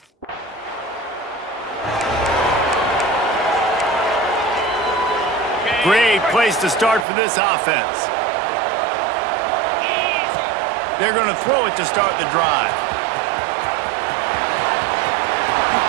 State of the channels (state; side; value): drops out; left; at 7.1 s